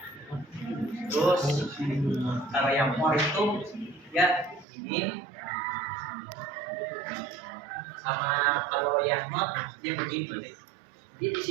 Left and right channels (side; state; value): left; drops out; at 4.7 s